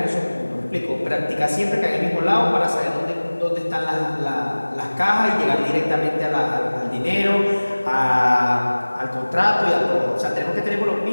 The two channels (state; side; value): inverted; both; correlation -1.00